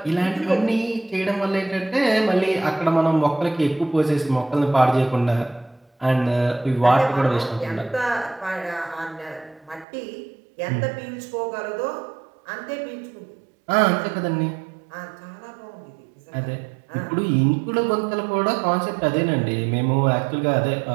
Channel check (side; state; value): left; drops out; at 9.9 s